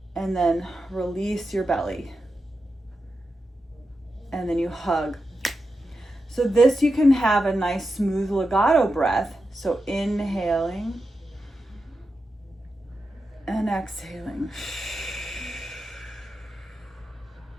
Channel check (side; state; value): both; normal; correlation 0.89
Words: and then release your belly. And then you hug. So this, you can have a nice smooth legato breath. So inhaling and exhaling.